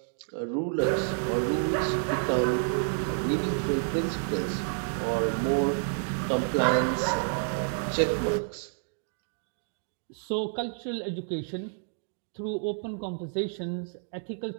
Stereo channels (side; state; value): left; silent; digital silence